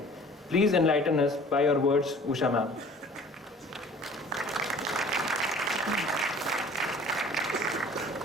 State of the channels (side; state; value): both; normal; correlation 0.48